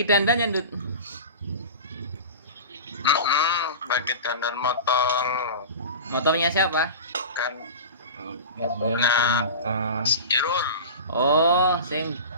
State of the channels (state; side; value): inverted; both; correlation -0.32